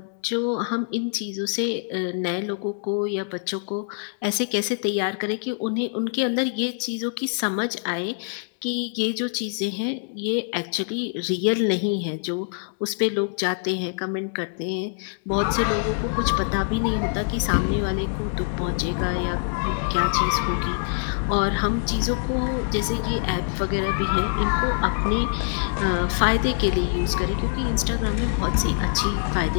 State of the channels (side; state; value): right; silent; digital silence